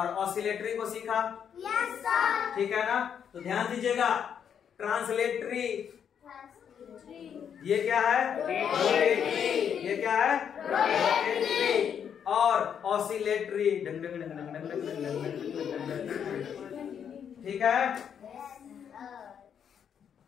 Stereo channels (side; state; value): right; quieter; 8.1 dB